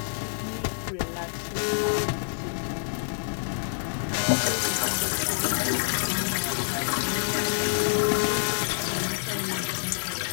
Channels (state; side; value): silent; right; 60 dB below the other